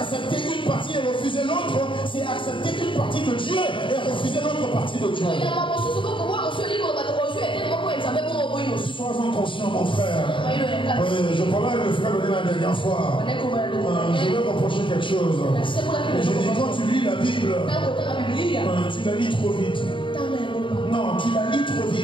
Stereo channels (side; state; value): right; late; 0.24 ms